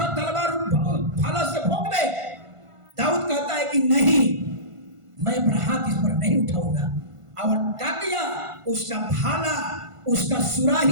तलवार, भाला से भोंक दे। दाऊद कहता है कि नहीं, मैं अपना हाथ इस पर नहीं उठाऊंगा। और क्या किया, उसका भाला, उसका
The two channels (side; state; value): left; late; 1.5 ms